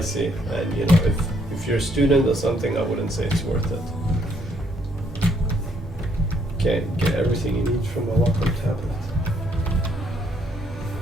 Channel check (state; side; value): normal; both; correlation 0.70